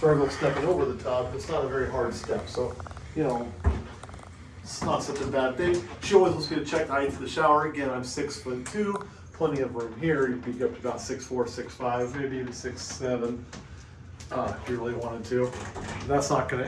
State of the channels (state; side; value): identical; both; correlation 1.00